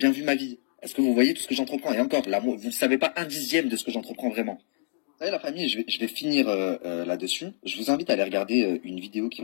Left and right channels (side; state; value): right; silent; digital silence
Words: vu ma vie? Est-ce que vous voyez tout ce que j'entreprends? Et encore, là, vous ne savez pas 1/10 de ce que j'entreprends vraiment. Vous savez la famille, je vais finir là-dessus. Je vous invite à aller regarder une vidéo qui